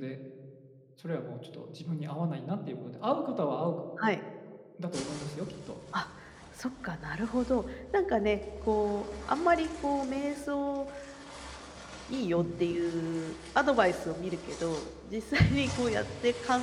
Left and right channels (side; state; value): both; identical; correlation 1.00